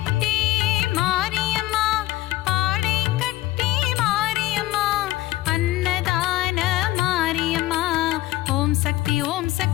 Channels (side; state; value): right; quieter; 16.9 dB